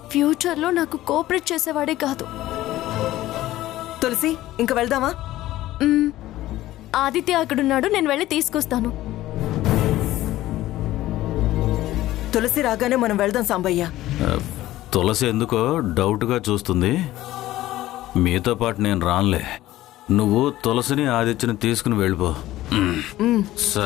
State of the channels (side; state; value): right; quieter; 15.4 dB